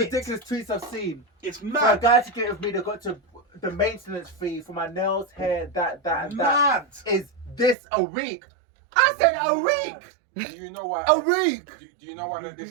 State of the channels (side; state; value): left; drops out; at 7.8 s